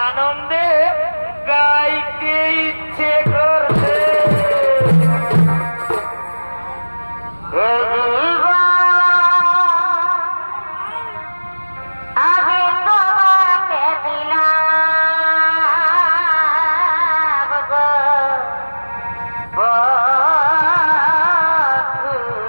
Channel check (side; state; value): both; inverted; correlation -1.00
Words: আনন্দে গাইতে ইচ্ছে করছে।